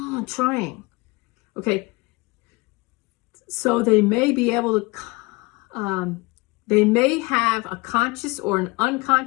I'm trying. Okay. So they may be able to, they may have a conscious or an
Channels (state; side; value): quieter; right; 24.7 dB